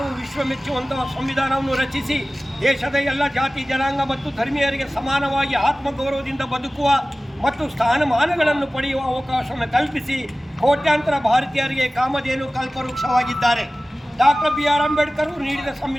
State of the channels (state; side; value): normal; both; correlation 0.97